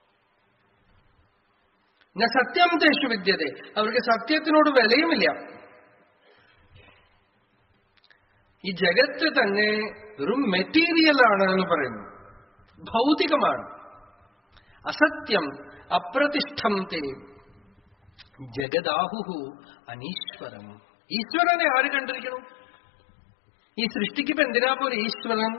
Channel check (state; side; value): drops out; right; at 18.7 s